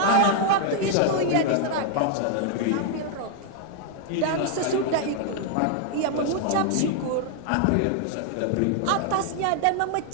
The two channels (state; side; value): different; both; correlation 0.00